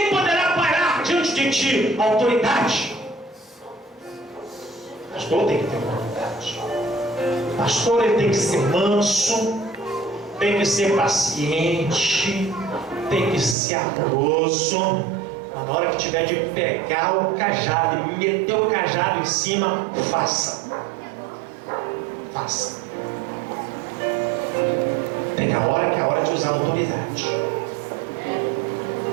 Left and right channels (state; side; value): drops out; left; at 13.6 s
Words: poderá parar diante de ti. Autoridade. Pastor tem que ter autoridade. Pastor ele tem que ser manso, tem que ser paciente, tem que ser amoroso. Mas na hora que tiver de pegar o cajado e meter o cajado em cima, faça. Faça. Tem a hora que é a hora de usar a autoridade.